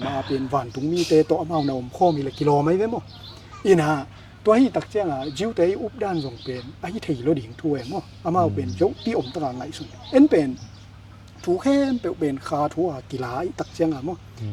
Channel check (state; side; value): identical; both; correlation 1.00